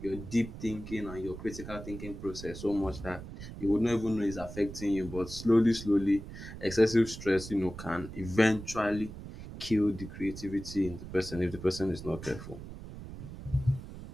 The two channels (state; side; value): noise; right; rumble, 12 dB below the sound